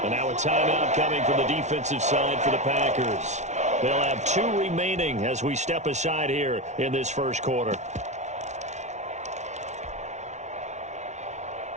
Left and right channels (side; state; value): left; late; 0.33 ms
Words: And now a timeout coming from the defensive side for the Packers. They'll have 2 remaining as we step aside here in this first quarter.